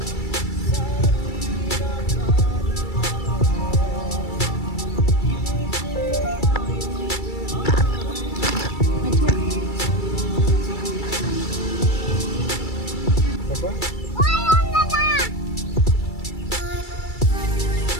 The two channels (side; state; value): right; late; 2.3 ms